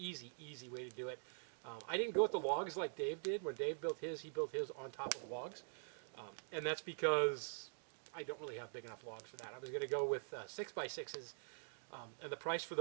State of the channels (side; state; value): left; silent; digital silence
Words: way to do it. I didn't go with the logs like Dave did. When Dave built his, he built his on top of logs. And that's because I don't really have big enough logs for that. I was going to go with 6x6s, and the price for